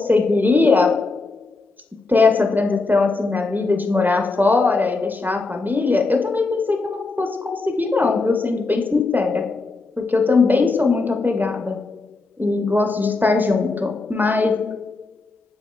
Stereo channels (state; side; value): quieter; right; 3.6 dB